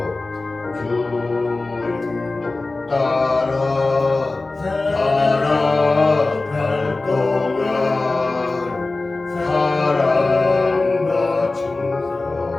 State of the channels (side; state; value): right; quieter; 3.3 dB